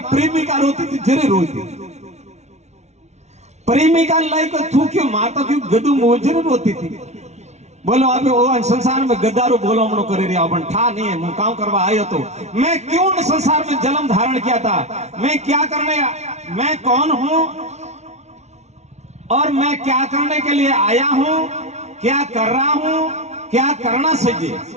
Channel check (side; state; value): left; late; 0.32 ms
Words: प्रेमिका रोती थी जरे रोती प्रेमिका लाइक थूक्यो मारता क्यों गदू मोजर रोती थी बोलो अबे वो संसार में गद्दारू बोलो मनो करे रिया अपन ठा नहीं है मैं काम करवा आयो तो मैं क्यों न संसार में जन्म धारण किया था मैं क्या करने मैं कौन हूं और मैं क्या करने के लिए आया हूं क्या कर रहा हूं क्या करना